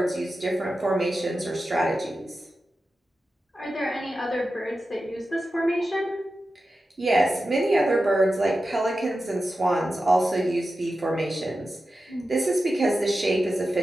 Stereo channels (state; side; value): normal; both; correlation 0.92